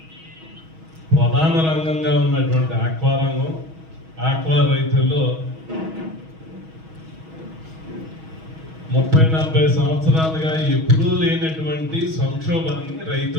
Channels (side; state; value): left; late; 6.3 ms